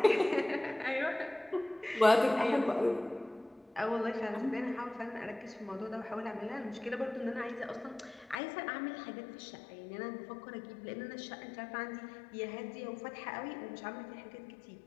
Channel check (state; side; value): drops out; right; at 8.4 s